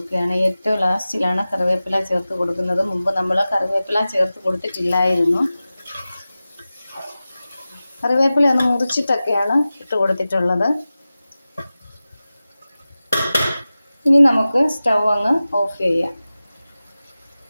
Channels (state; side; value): inverted; both; correlation -0.96